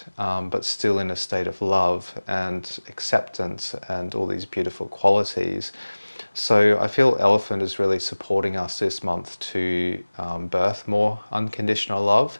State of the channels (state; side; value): inverted; both; correlation -1.00